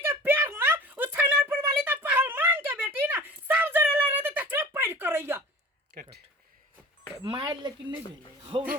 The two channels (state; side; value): normal; both; correlation 0.42